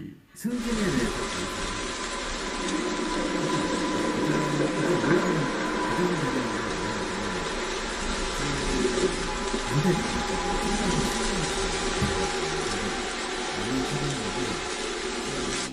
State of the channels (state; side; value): identical; both; correlation 1.00